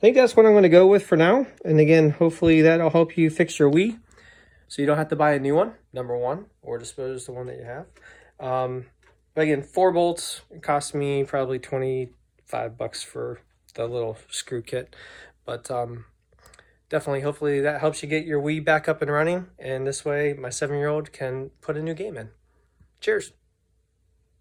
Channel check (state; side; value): identical; both; correlation 1.00